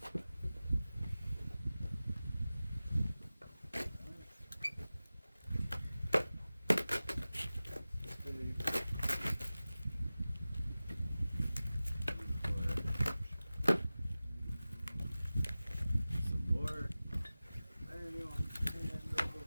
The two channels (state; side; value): inverted; both; correlation -0.97